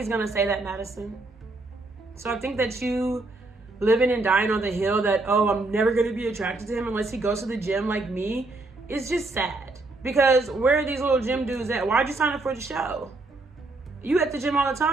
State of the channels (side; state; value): left; quieter; 3.1 dB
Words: going to say that, Madison. So I think that you living and dying on the hill that, oh, I'm never going to be attracted to him unless he goes to the gym like me, is just sad. Because where are these little gym dudes at? Why'd you sign up for the show? You at the gym all the